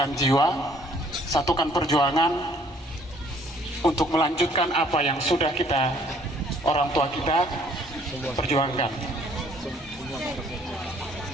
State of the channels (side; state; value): both; normal; correlation 0.60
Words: jiwa, satukan perjuangan untuk melanjutkan apa yang sudah kita, orang tua kita, perjuangkan.